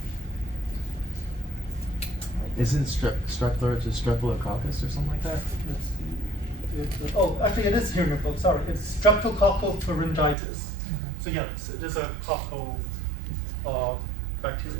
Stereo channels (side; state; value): left; drops out; at 10.4 s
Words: Isn't strep throat just streptococcus or something like that? Actually, it is here in your book. Sorry, it's streptococcal pharyngitis. So yes, it is a coccal